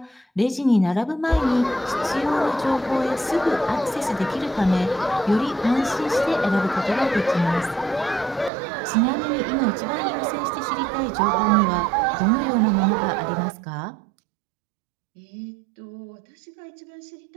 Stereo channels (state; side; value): drops out; left; at 8.5 s